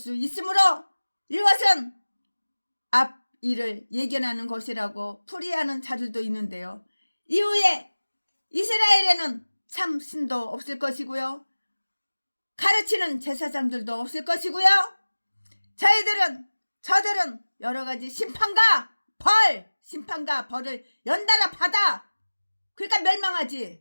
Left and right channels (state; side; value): inverted; both; correlation -1.00